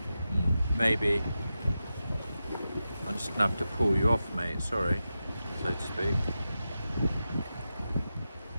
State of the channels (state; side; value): inverted; both; correlation -0.91